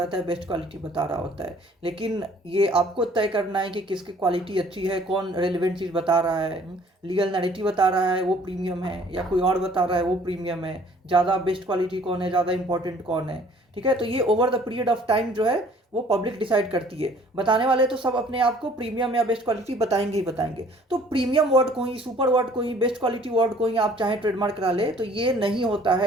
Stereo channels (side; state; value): both; normal; correlation 0.55